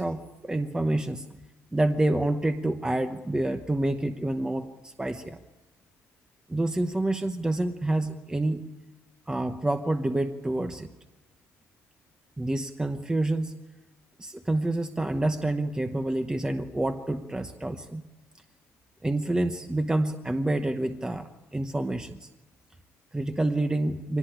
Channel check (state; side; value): normal; both; correlation 0.96